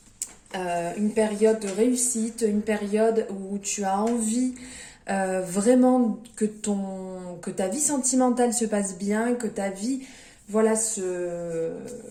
une période de réussite, une période où tu as envie vraiment que ta vie sentimentale se passe bien, que ta vie, voilà,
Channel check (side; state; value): both; identical; correlation 1.00